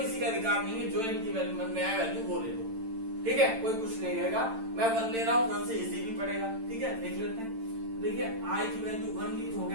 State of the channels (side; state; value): left; late; 8.9 ms